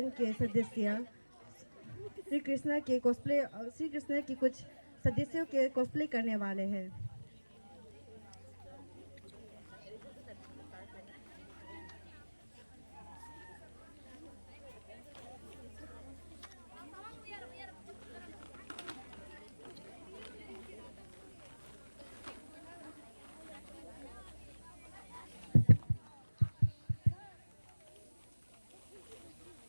के सदस्य श्री कृष्ण की कुछ सदस्यों के कॉस्प्ले करने वाले हैं।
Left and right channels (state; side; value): inverted; both; correlation -1.00